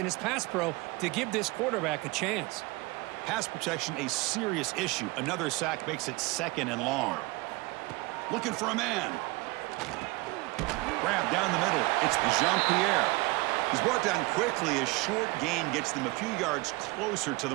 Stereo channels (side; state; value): left; quieter; 23.4 dB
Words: his pass pro to give this quarterback a chance. Pass protection, a serious issue. Another sack makes it 2nd and long. Looking for a man. Grab down the middle. It's Jean-Pierre. He's brought down quickly. A short gain gets them a few yards closer to